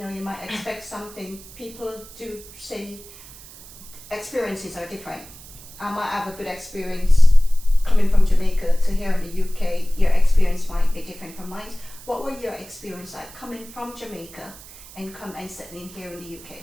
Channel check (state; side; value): noise; right; hiss, 19 dB below the sound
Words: know, you might expect something. People do say experiences are different. I might have a good experience coming from Jamaica to here in the UK. Your experience might be different from mine. What were your experience like coming from Jamaica and settling here in the